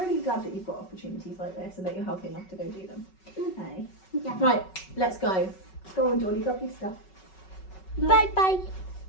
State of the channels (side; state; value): right; late; 5.3 ms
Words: glad that you've got opportunities like this and that you're healthy enough to go do them. Okay. Yeah. Right, let's go. Go on, Dawny, grab your stuff. No. Bye-bye.